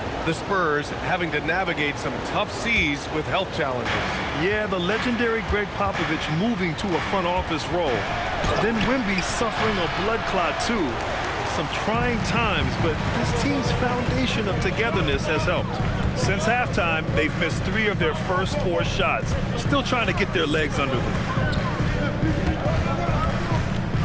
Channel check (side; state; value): both; identical; correlation 1.00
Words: the Spurs having to navigate some tough seas with health challenges. Yeah, the legendary Greg Popovich moving to a front office role. Then Wemby suffering a blood clot too. Some trying times, but this team's foundation of togetherness has helped. Since halftime, they've missed 3 of their first 4 shots. Still trying to get their legs under them.